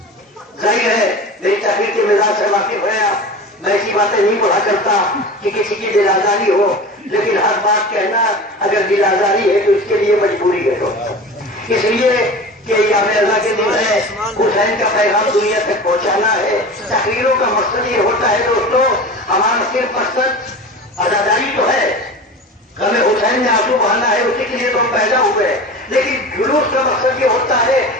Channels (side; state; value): both; normal; correlation 0.34